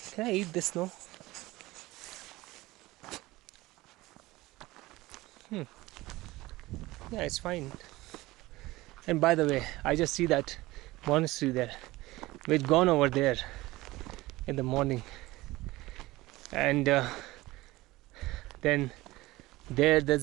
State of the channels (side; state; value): left; quieter; 19.2 dB